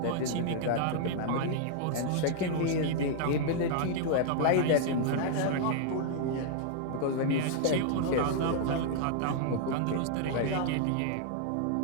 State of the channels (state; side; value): different; both; correlation -0.01